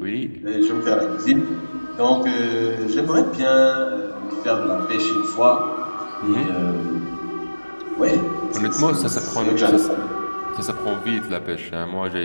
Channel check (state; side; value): inverted; both; correlation -1.00